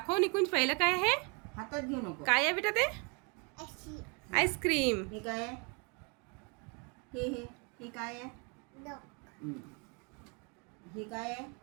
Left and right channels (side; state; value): left; quieter; 33.8 dB